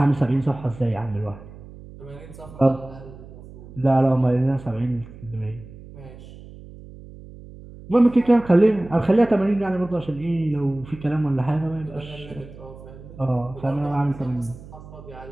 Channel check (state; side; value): noise; right; hum, 17 dB below the sound